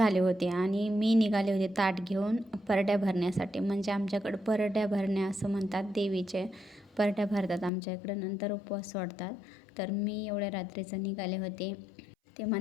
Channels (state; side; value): drops out; right; at 7.7 s